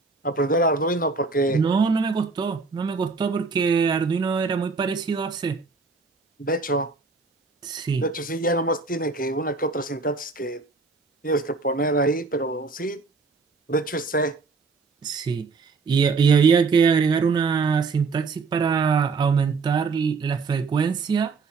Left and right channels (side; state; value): left; quieter; 4.4 dB